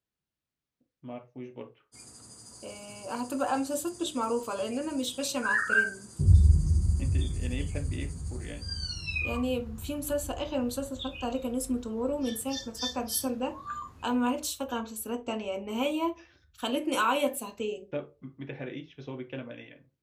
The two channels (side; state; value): both; identical; correlation 1.00